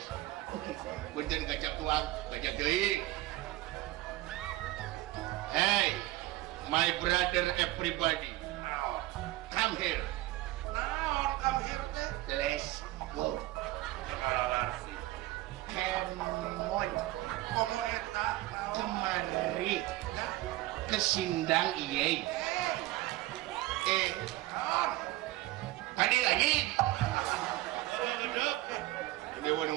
Punten gacang tuang, gacang deui. Hey, my brother everybody. Come here. Let's go. Kemon kemari ke Sindang iye. Tadi lagi. Ini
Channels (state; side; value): quieter; left; 17.7 dB